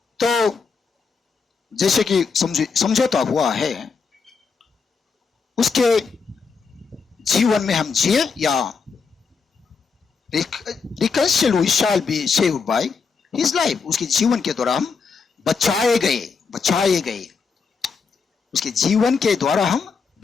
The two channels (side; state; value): right; quieter; 5.2 dB